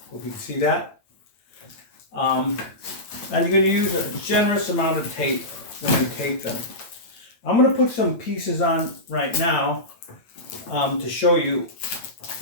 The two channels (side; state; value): right; late; 8.9 ms